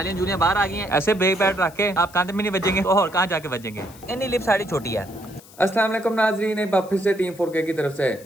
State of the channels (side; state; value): left; noise; hiss, 22 dB below the sound